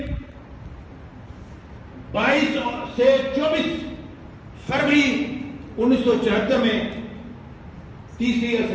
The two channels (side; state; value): both; identical; correlation 1.00